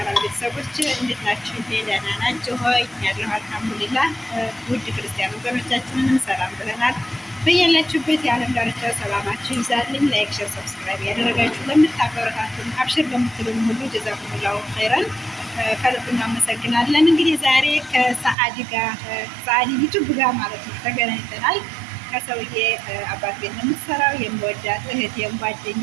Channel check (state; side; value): drops out; left; at 18.4 s